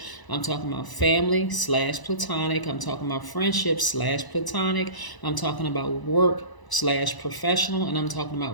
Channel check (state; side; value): late; right; 1.0 ms